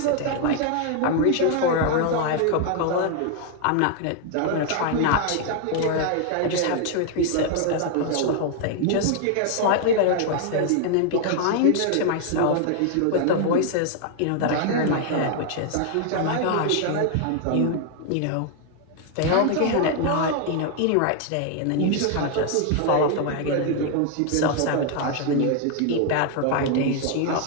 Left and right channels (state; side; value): different; both; correlation 0.00